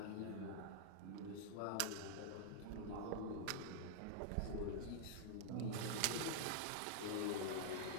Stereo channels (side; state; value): both; different; correlation -0.01